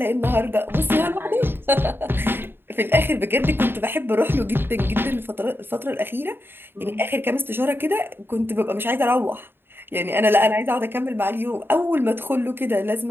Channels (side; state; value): left; late; 0.10 ms